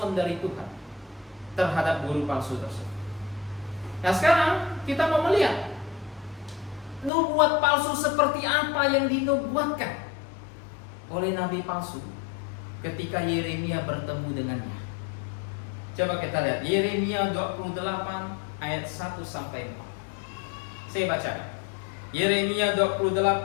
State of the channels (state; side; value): drops out; right; at 7.1 s